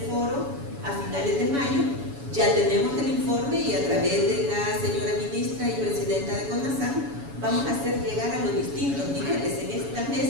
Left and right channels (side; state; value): left; late; 7.1 ms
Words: foro a finales de mayo. Ya tenemos el informe, y a través de la señora ministra y presidenta de CONASAN vamos a hacer llegar a los distintos niveles. En estas